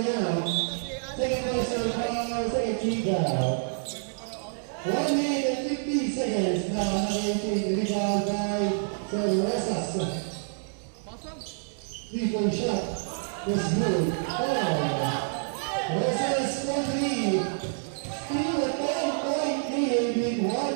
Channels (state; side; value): silent; left; digital silence